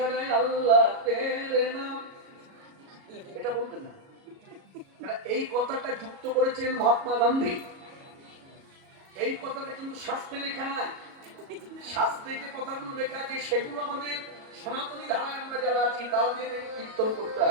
আল্লাহ তেরে নাম, এটা বলবেন না। এই কথাটা যুক্ত করেছেন মহাত্মা গান্ধী। এই কথাটা কিন্তু শাস্ত্রে লেখা নাই। শাস্ত্রে যে কথাগুলো লেখা আছে সেগুলো আমাদের সনাতনী ধারায় আমরা যারা আছি তাদের কীর্তন করতে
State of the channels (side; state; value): left; late; 37 ms